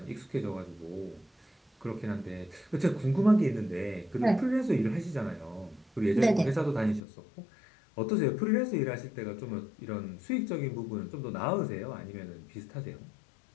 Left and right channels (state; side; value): drops out; right; at 7.0 s